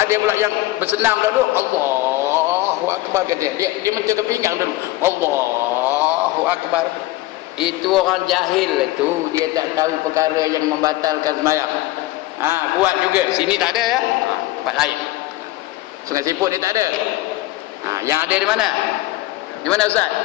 pula yang bersenam dulu, Allahu Akbar katanya. Dia mentul ke pinggang dulu, Allahu Akbar. Itu orang jahil tu, dia tak tahu perkara yang membatalkan sembahyang. Buat juga. Sini tak ada ya. Tempat lain. Sungai Siput ni tak ada. Yang ada di mana? Di mana Ustaz?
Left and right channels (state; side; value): quieter; right; 17.8 dB